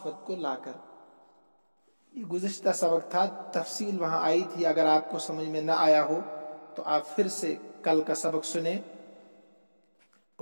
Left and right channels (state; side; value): inverted; both; correlation -1.00